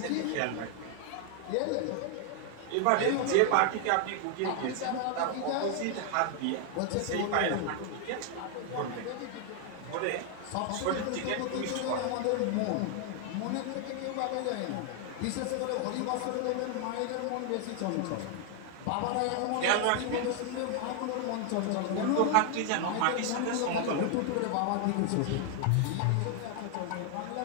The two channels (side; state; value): both; different; correlation 0.00